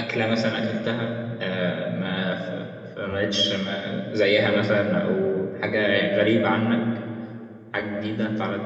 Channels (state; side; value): identical; both; correlation 1.00